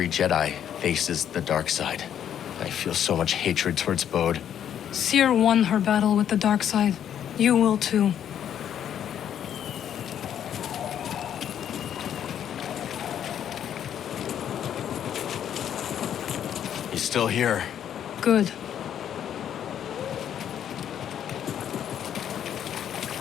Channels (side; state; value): right; quieter; 9.6 dB